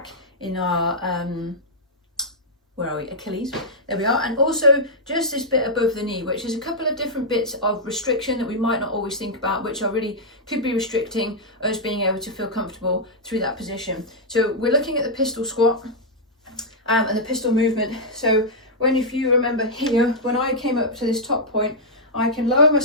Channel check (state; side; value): normal; both; correlation -0.07